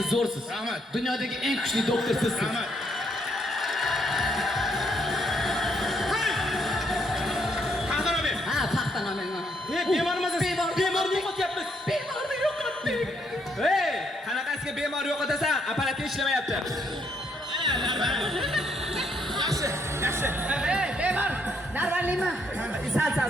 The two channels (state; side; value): normal; both; correlation 0.73